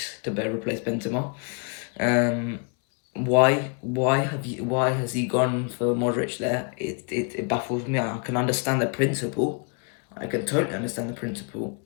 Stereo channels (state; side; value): quieter; right; 37.3 dB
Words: to replace Benzema? Why has he gone for Modric there? It baffles me. I can understand the principle. I can totally understand the principle,